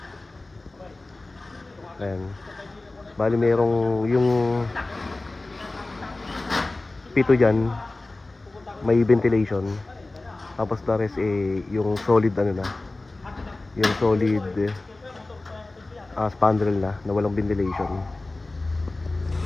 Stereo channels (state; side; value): quieter; right; 3.0 dB